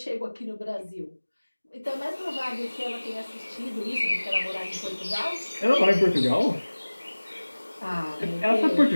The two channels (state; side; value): inverted; both; correlation -1.00